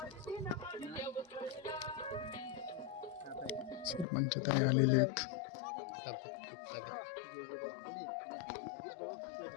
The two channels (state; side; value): drops out; right; at 4.0 s